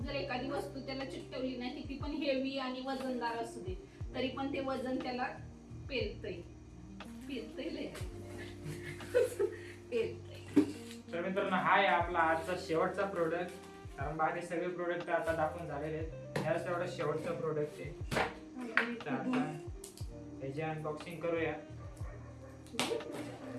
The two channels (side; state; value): both; identical; correlation 1.00